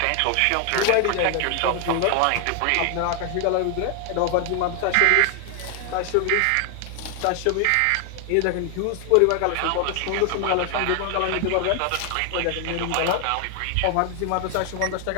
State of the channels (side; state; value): both; different; correlation 0.00